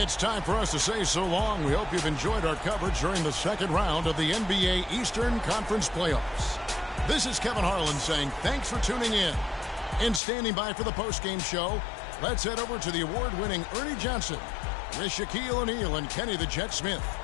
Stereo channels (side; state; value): right; drops out; at 10.2 s